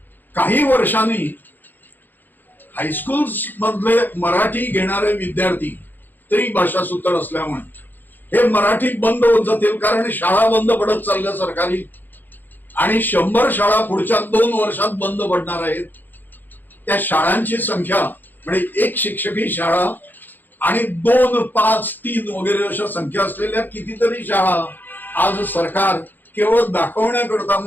काही वर्षांनी हायस्कूल्स मधले मराठी घेणारे विद्यार्थी त्रिभाषा सूत्र असल्यामुळे हे मराठी बंद होत जातील. कारण शाळा बंद पडत चालल्या सरकारी, आणि 100 शाळा पुढच्या 2 वर्षात बंद पडणार आहेत. त्या शाळांची संख्या म्हणजे एक शिक्षकी शाळा आणि 2, 5, 3 वगैरे अशा संख्या असलेल्या कितीतरी शाळा आज सरकार केवळ दाखवण्याकरता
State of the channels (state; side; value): late; right; 0.088 ms